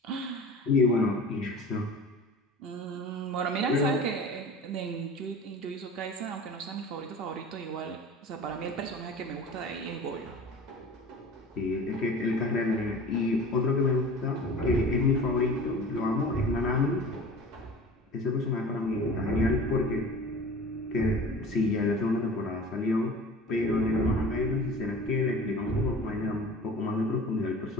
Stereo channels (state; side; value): normal; both; correlation 0.39